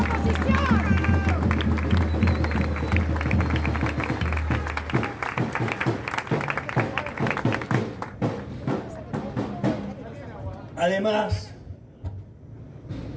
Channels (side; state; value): both; identical; correlation 1.00